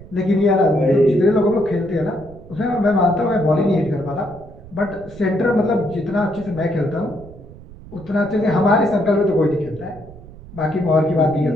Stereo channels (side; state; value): right; noise; rumble, 18 dB below the sound